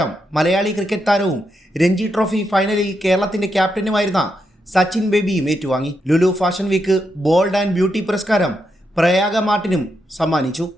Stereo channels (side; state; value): both; normal; correlation 0.83